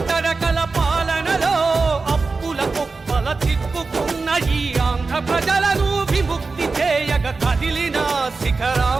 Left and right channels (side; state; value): left; quieter; 4.1 dB